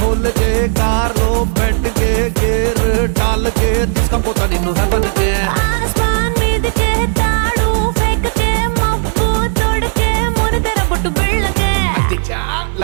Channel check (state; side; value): silent; left; 63 dB below the other